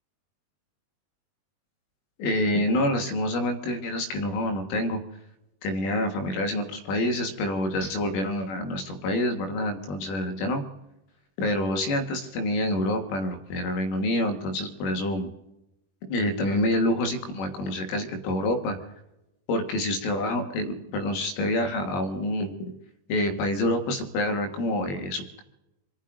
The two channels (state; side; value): late; right; 21 ms